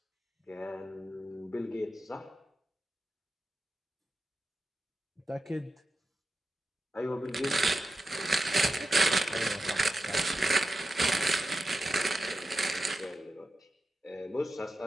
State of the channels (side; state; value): both; normal; correlation 0.90